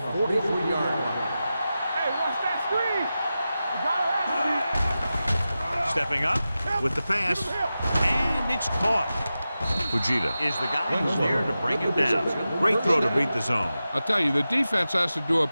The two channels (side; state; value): both; inverted; correlation -0.93